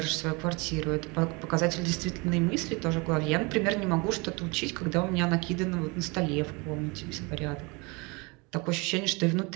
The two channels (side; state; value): left; quieter; 28.1 dB